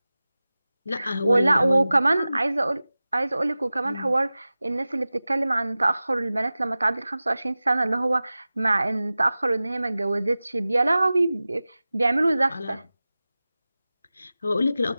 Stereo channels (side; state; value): both; inverted; correlation -0.97